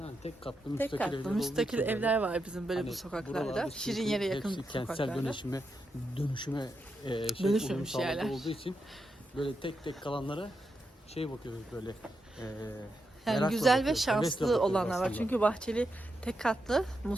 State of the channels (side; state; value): both; normal; correlation 0.85